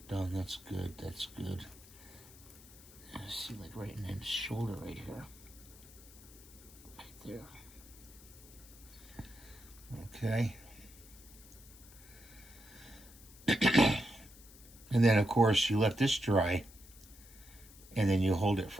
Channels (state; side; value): noise; left; hiss, 21 dB below the sound